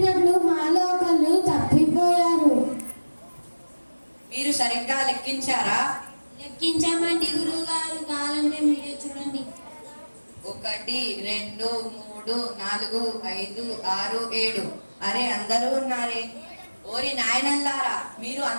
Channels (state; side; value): inverted; both; correlation -1.00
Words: మాలో ఒకరు తప్పిపోయారు. మీరు సరిగ్గా లెక్కించారా? లెక్కించామండి గురుగారు, కావాలంటే మీరే చూడండి. 1 2 3 4 5 6 7. అరే అందరూ ఉన్నారే. ఓరి నాయనల్లారా, మీరు